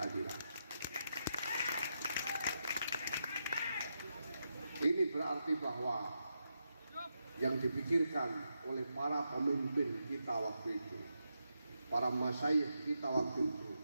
Ini berarti bahwa yang dipikirkan oleh para pemimpin kita waktu itu, para masyayikh kita waktu itu,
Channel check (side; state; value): both; inverted; correlation -0.85